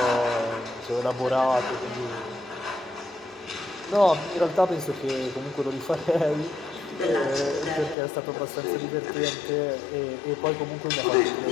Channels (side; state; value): right; drops out; at 8.0 s